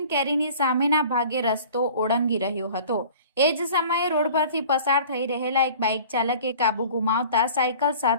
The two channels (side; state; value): both; inverted; correlation -0.45